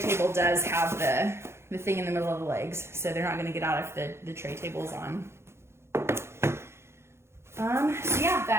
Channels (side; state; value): left; late; 0.13 ms